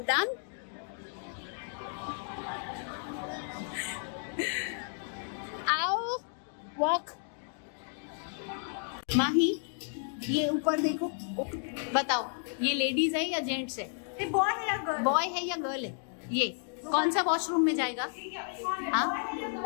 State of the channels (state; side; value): silent; right; 56 dB below the other